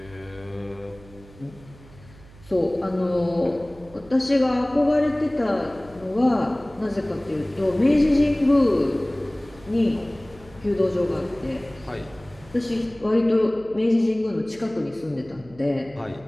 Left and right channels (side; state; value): right; noise; hum, 22 dB below the sound